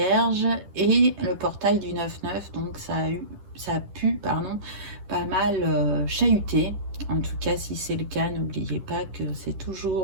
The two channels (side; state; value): left; late; 10 ms